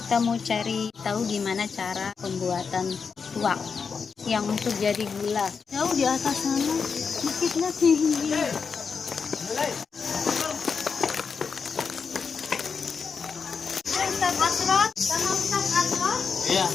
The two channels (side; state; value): right; quieter; 5.7 dB